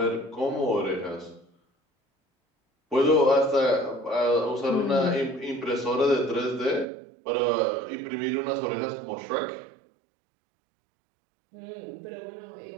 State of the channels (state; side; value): drops out; left; at 6.9 s